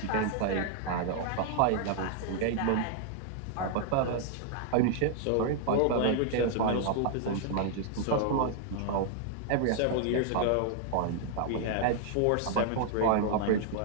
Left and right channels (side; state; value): both; different; correlation -0.01